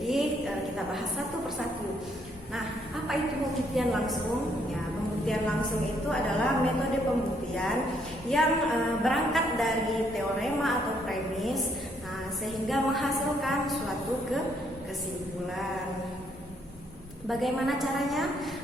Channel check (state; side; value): normal; both; correlation 0.70